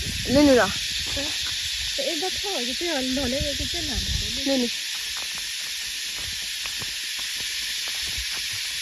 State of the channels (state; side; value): identical; both; correlation 1.00